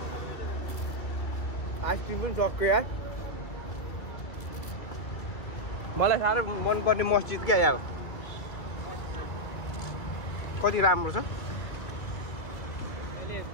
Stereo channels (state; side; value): late; right; 2.4 ms